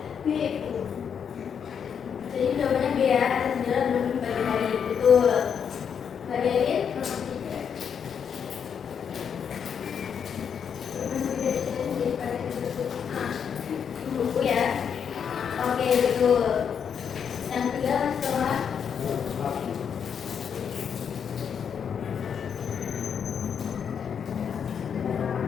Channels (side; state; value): right; quieter; 7.4 dB